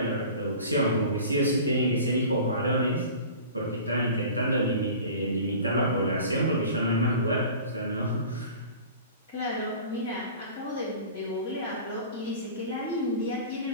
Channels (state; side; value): inverted; both; correlation -0.40